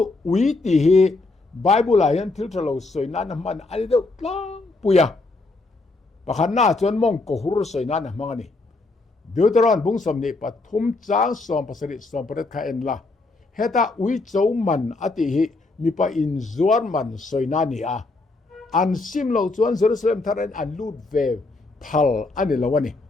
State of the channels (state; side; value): quieter; right; 3.4 dB